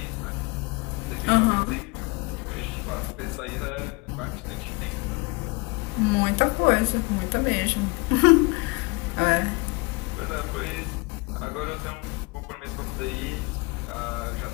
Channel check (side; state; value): right; quieter; 26.3 dB